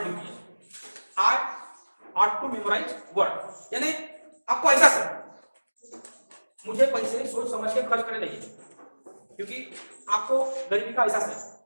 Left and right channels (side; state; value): both; inverted; correlation -1.00